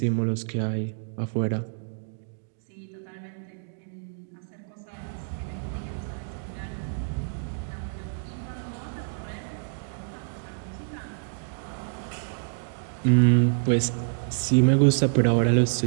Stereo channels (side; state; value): left; silent; digital silence